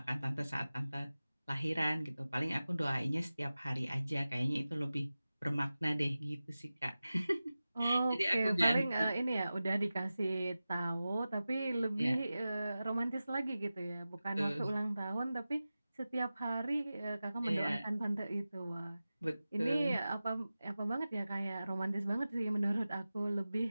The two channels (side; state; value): both; inverted; correlation -0.95